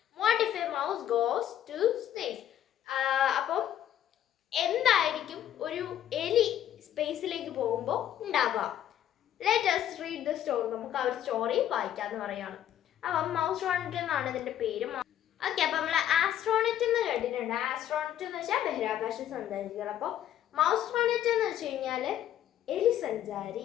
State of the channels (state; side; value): quieter; right; 11.1 dB